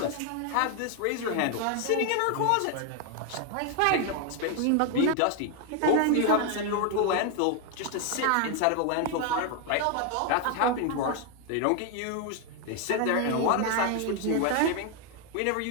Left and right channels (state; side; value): different; both; correlation 0.01